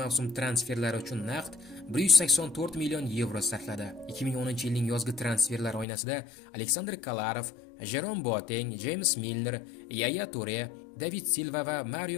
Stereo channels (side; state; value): right; drops out; at 5.9 s